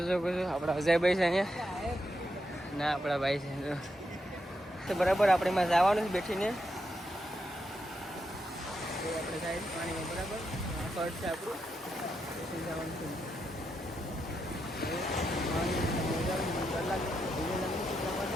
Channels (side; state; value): both; normal; correlation 0.83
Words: શકો છો આપણા અજયભાઈ છે અહીંયા, ના આપણા ભાઈ છે તો, બરાબર. આપણે એમાં જવાનું છે બેઠીને. આપણે જાય પાણીમાં, બરાબર. કડ છે આપણું, જવાનું છે.